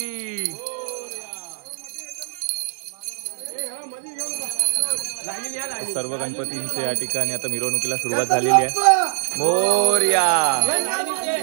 सर्व गणपतींचे या ठिकाणी आता मिरवणुकीला सुरुवात झालेली आहे. मोरया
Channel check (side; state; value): left; silent; digital silence